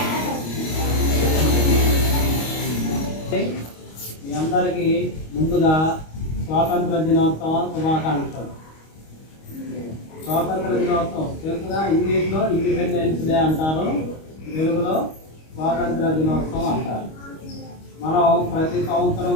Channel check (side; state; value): right; late; 25 ms